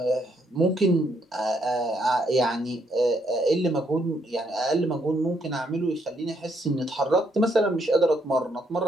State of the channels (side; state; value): both; normal; correlation 0.73